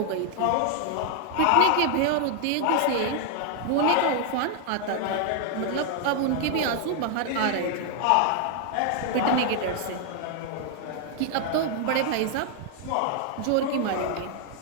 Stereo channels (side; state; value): both; different; correlation 0.00